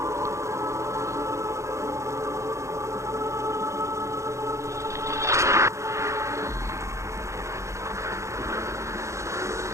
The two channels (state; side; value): late; left; 0.14 ms